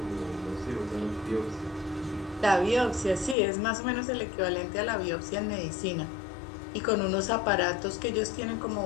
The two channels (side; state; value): right; drops out; at 3.4 s